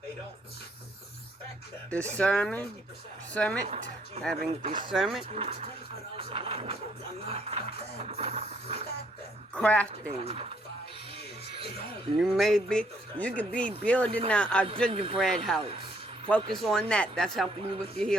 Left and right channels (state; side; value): normal; both; correlation 0.68